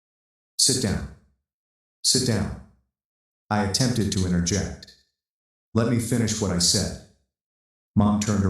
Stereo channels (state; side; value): identical; both; correlation 1.00